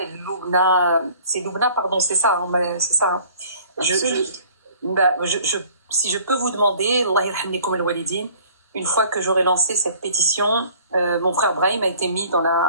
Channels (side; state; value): both; inverted; correlation -0.52